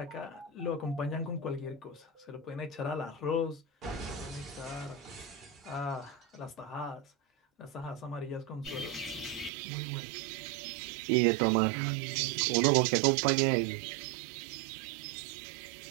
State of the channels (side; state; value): left; drops out; at 9.5 s